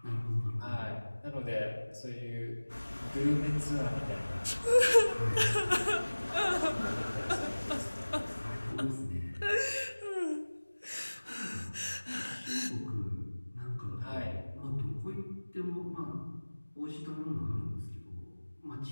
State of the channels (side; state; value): both; inverted; correlation -1.00